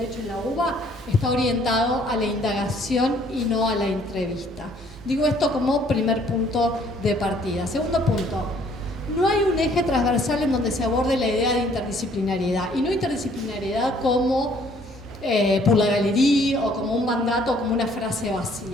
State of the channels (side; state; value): both; normal; correlation 0.61